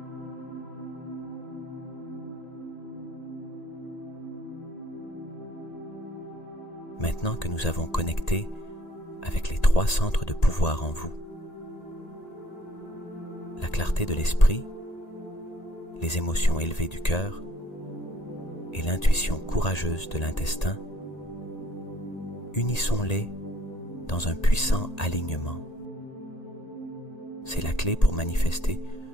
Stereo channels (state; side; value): late; right; 1.8 ms